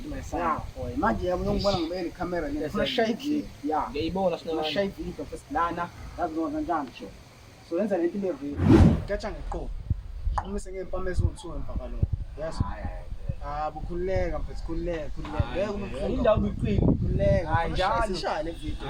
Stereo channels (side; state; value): both; identical; correlation 1.00